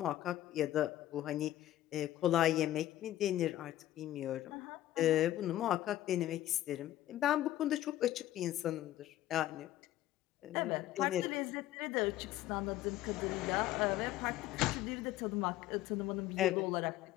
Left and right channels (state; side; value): quieter; right; 14.0 dB